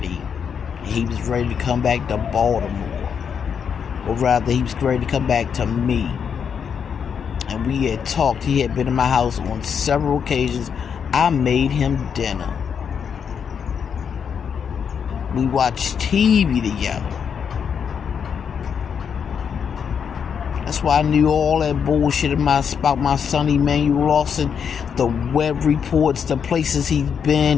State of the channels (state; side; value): quieter; right; 7.2 dB